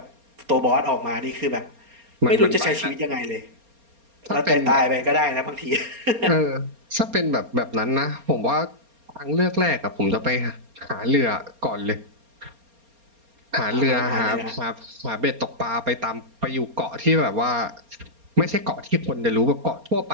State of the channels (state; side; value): late; left; 4.3 ms